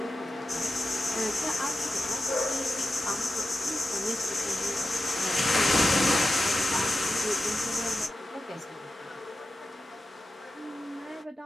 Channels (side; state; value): both; normal; correlation 0.92